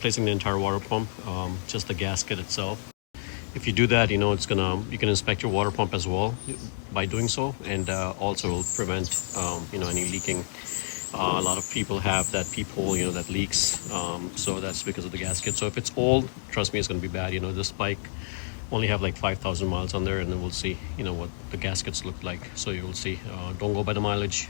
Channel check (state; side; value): silent; right; digital silence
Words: the entire water pump, just the gasket itself. If you do that, you can inspect your water pump as well by doing so, and also will prevent any leaking. A lot of people have that peephole, that leaks. So that's because of the gasket. So if it's old, trust me, it's going to be bad. This bike only have like 5,000 miles on there, and then we'll see, what the gaskets look like. So you'll see. Don't go by the mileage,